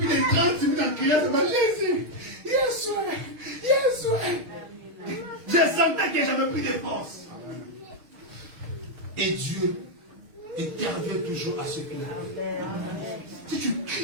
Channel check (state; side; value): late; left; 6.4 ms